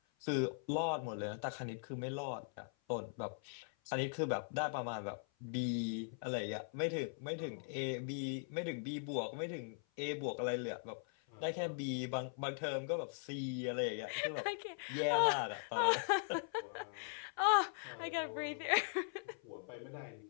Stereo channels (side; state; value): right; silent; 51 dB below the other